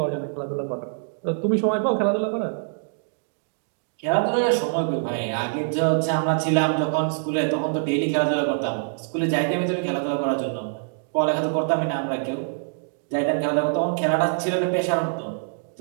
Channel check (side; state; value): left; silent; digital silence